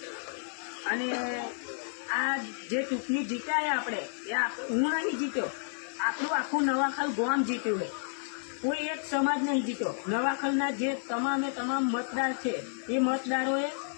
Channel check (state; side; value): silent; right; 57 dB below the other